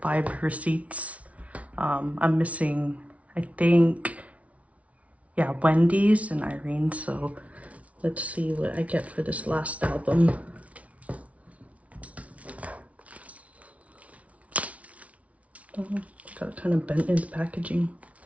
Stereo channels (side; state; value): left; late; 0.066 ms